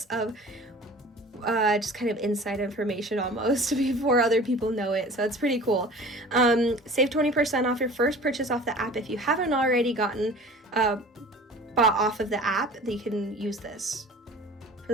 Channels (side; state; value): both; normal; correlation 0.43